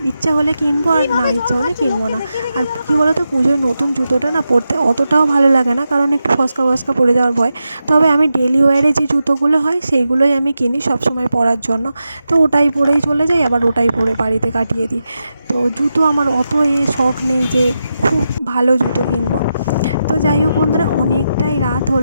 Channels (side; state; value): both; inverted; correlation -0.88